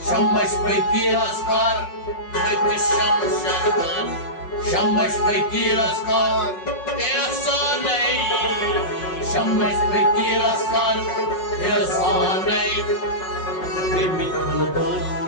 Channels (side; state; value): right; late; 5.5 ms